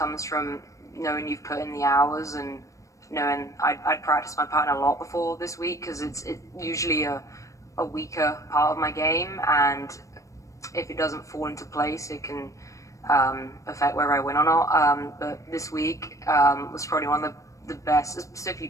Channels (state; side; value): late; right; 0.15 ms